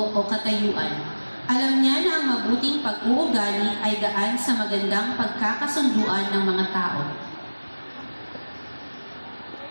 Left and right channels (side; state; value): both; inverted; correlation -1.00